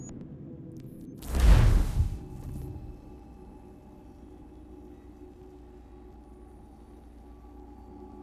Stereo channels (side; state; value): both; identical; correlation 1.00